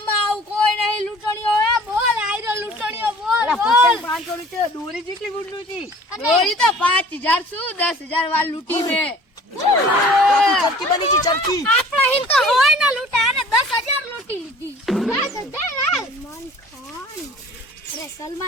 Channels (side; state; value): both; normal; correlation 0.48